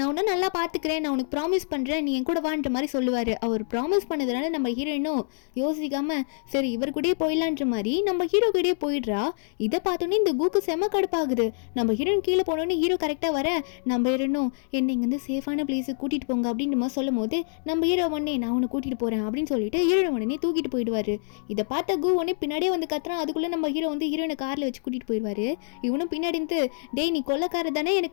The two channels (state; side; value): silent; right; digital silence